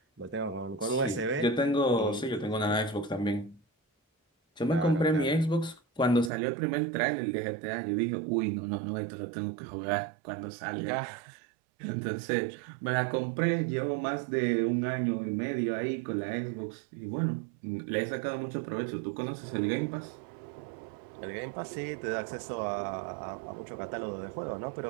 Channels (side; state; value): left; drops out; at 6.3 s